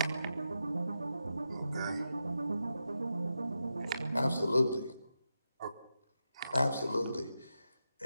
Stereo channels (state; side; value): inverted; both; correlation -0.88